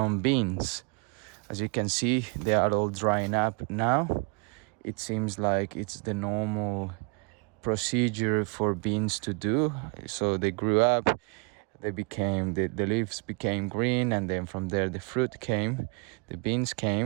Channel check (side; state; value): left; quieter; 34.4 dB